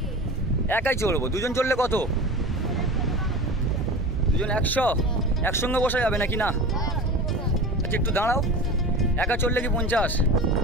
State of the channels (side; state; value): both; normal; correlation 0.33